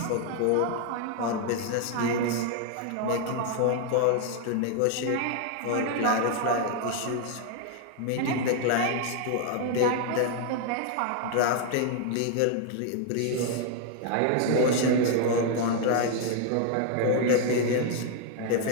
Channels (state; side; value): different; both; correlation 0.00